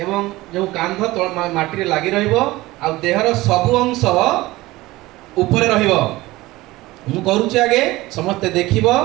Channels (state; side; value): quieter; left; 19.0 dB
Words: जो कांध तल माटी रे लागि रहिबो आ देहर सब अंश ऊपर रहिबो। मु करूची आगे समस्ते देखिबो